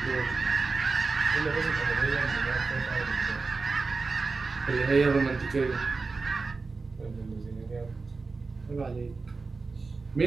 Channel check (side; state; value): left; quieter; 4.1 dB